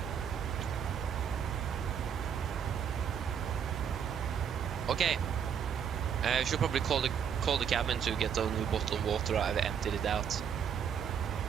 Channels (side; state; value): left; quieter; 7.9 dB